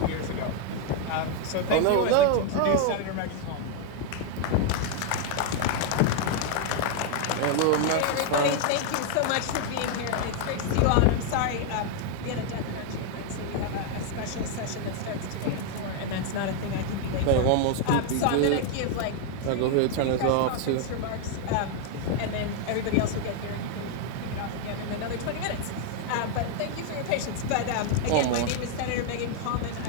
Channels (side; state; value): both; different; correlation 0.00